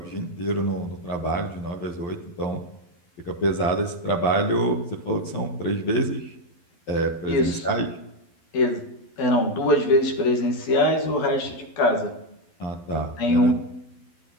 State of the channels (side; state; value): right; late; 12 ms